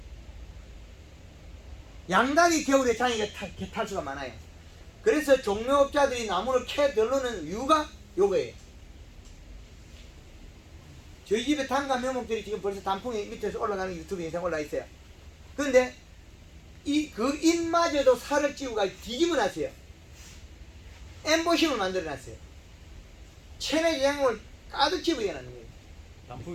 양달이 겨울에 장애가 탈수가 많아요. 그래서 종묘업자들이 나무를 캐 들르는 이유가 요거예요. 저희 집에 단과 묘목들이 지금 벌써 단풍이 밑에서 올라가는 유튜브 영상 올라와 있어요. 그런데 그 잎마저도 살을 찌우고 뒤집어 놨어요. 엠보싱을 만들어 놨어요. 체내 제형을 가득 집어넣어 놨는 거예요.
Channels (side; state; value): both; identical; correlation 1.00